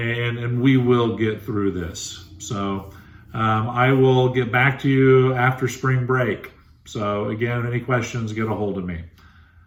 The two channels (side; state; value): both; identical; correlation 1.00